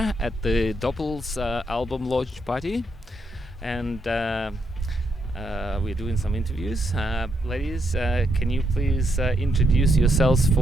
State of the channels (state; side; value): normal; both; correlation 0.78